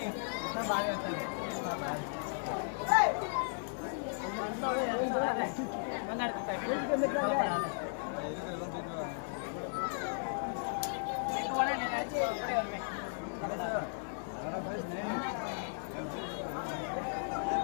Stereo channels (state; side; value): silent; right; digital silence